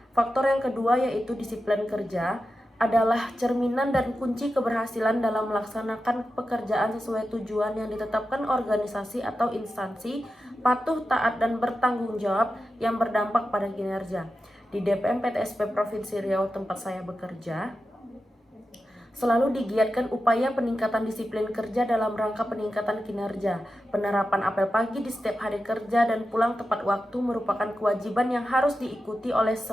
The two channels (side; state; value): both; normal; correlation 0.91